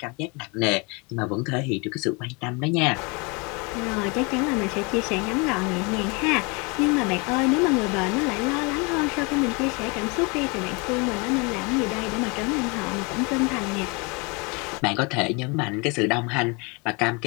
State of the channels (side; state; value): right; quieter; 29.8 dB